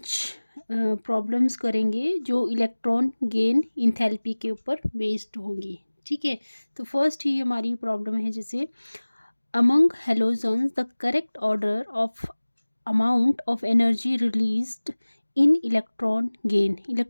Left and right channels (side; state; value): both; inverted; correlation -1.00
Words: प्रॉब्लम्स करेंगे जो इलेक्ट्रॉन गेन इंथैल्पी के ऊपर बेस्ड होंगी। ठीक है, तो फर्स्ट ही हमारी प्रॉब्लम है जैसे among halogens the correct order of amount of energy released in electron